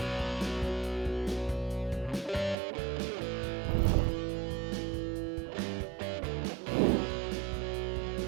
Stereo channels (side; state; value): left; drops out; at 2.6 s